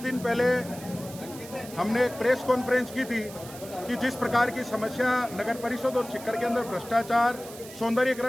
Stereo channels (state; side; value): noise; right; hiss, 16 dB below the sound